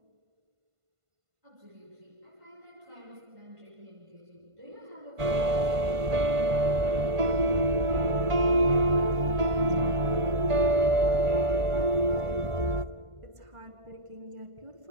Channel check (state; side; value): late; left; 1.5 ms